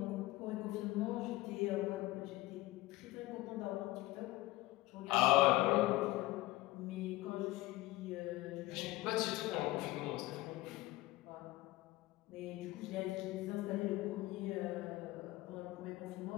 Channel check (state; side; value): quieter; right; 18.5 dB